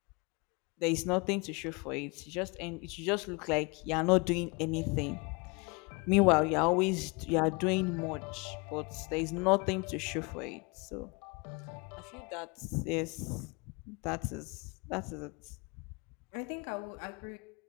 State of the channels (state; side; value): quieter; right; 29.4 dB